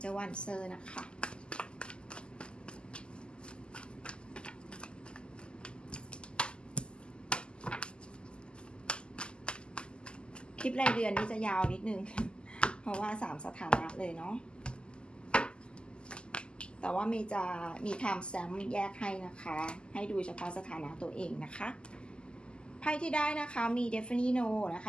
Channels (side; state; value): right; late; 0.050 ms